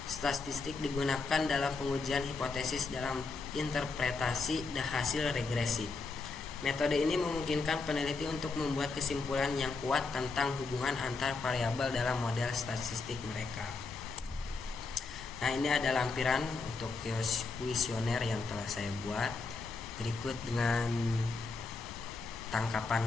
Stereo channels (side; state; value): right; quieter; 4.1 dB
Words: statistik digunakan dalam pengujian hipotesis dalam interpretasi hasil regresi. Metode ini memungkinkan peneliti untuk membuat kesimpulan yang kuat tentang hubungan antar variabel dalam model statistik mereka. Nah, ini ada lampiran untuk kuesioner yang telah saya buat. Berikut dengan tangkapan